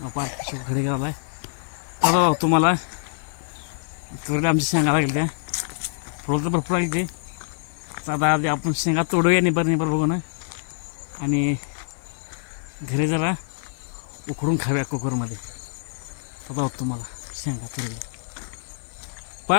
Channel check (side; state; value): right; silent; digital silence